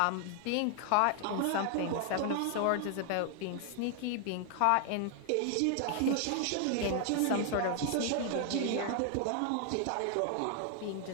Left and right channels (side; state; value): both; different; correlation 0.00